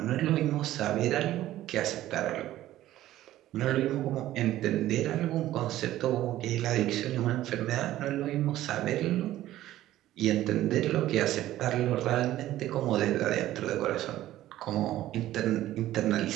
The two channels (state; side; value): quieter; left; 14.3 dB